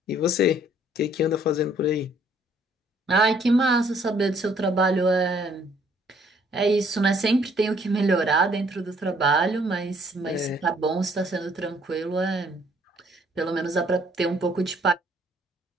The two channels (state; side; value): normal; both; correlation 0.63